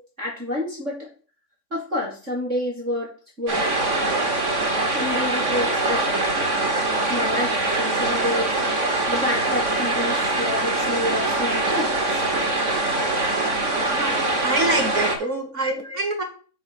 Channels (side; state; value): left; late; 3.6 ms